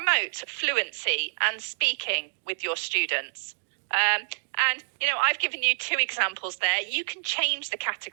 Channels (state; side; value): silent; left; digital silence